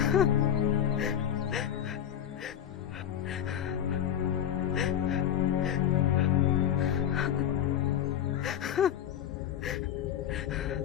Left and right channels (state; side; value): quieter; right; 9.9 dB